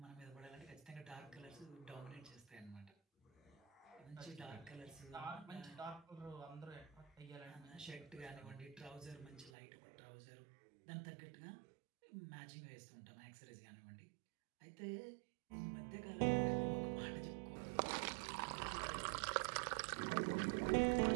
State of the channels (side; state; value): left; drops out; at 9.5 s